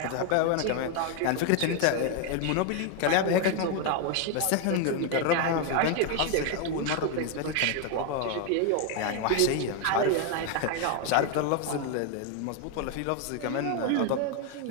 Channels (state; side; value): different; both; correlation 0.01